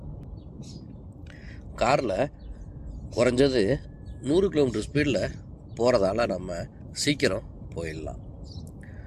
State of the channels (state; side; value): identical; both; correlation 1.00